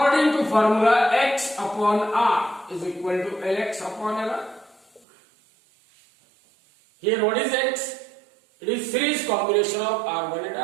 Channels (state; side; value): drops out; left; at 5.1 s